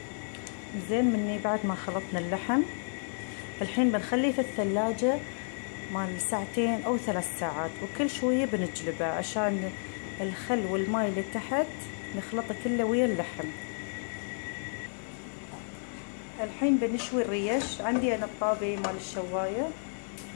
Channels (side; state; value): right; silent; digital silence